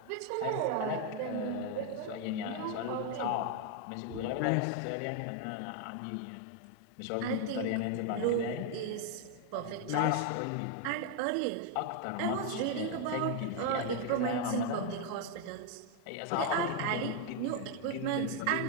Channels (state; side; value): different; both; correlation 0.01